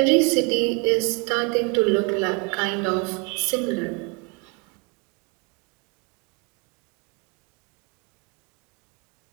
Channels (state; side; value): quieter; left; 31.1 dB